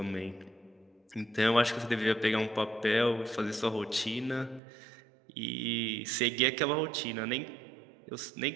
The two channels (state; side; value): drops out; left; at 4.6 s